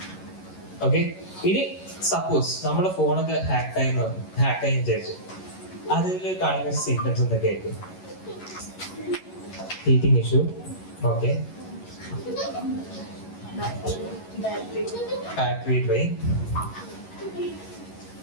ഓക്കെ, ഇനി സപ്പോസ് നമ്മുടെ ഫോണൊക്കെ ഹാക്കായി വിചാരിച്ചു, അതിൽ കാണുന്ന സിംറ്റംസ് എന്തൊക്കെ ആയിരിക്കും? Heating issue, okay, battery drain,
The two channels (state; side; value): late; right; 11 ms